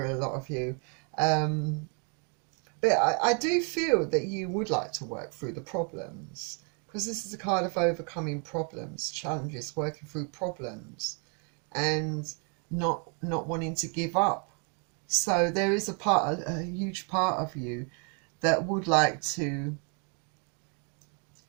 a lot of you. But I do feel that you would like to work through the problems, because this is a card of overcoming problems, challenges, working through problems, and not wanting to give up. So there is a huge part of you that would like to,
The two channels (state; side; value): quieter; left; 38.2 dB